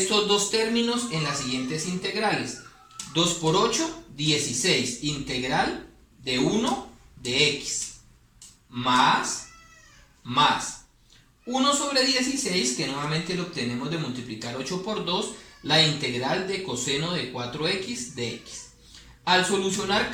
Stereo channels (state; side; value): identical; both; correlation 1.00